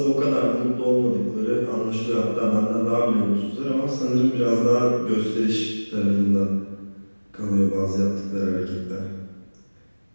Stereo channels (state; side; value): inverted; both; correlation -1.00